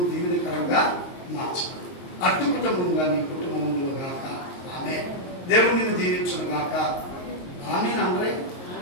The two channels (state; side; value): late; right; 22 ms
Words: దీవెనకరంగా మార్చుకుంది. అటు కుటుంబంగా నీ కుటుంబంలో గాక. ఆమె దేవుడిని దీవించును గాక. ఆమె అందరే